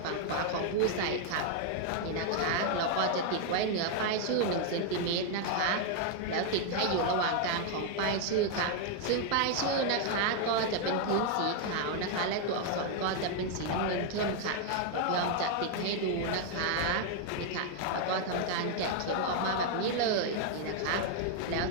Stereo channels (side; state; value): both; different; correlation 0.00